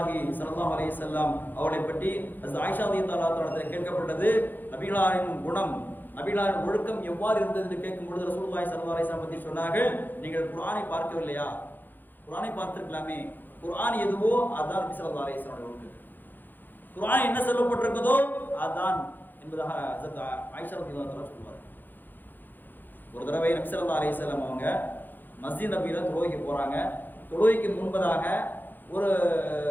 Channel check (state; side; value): late; right; 0.089 ms